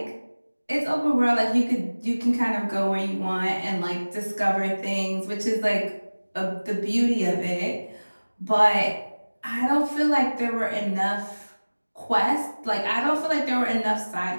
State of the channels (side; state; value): both; inverted; correlation -1.00